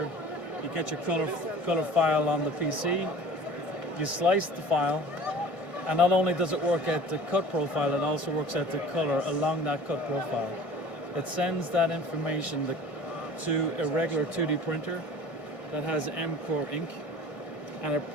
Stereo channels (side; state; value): right; late; 1.6 ms